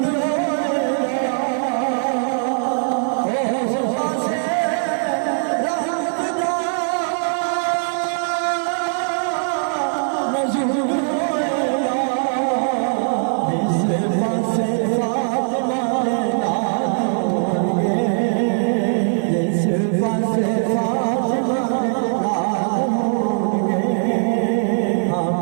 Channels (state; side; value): silent; left; digital silence